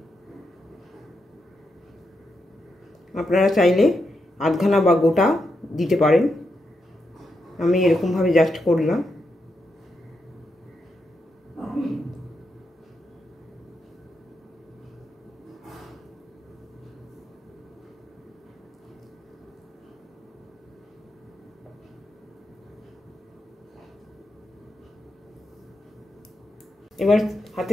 আপনারা চাইলে আধখানা বা গোটা দিতে পারেন, আমি এরকমভাবে জাস্ট করলাম। এবার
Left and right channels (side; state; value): both; normal; correlation 0.84